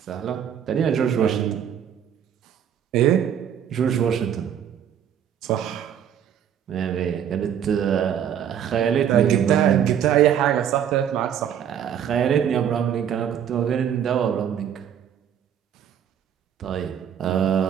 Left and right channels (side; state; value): left; quieter; 9.1 dB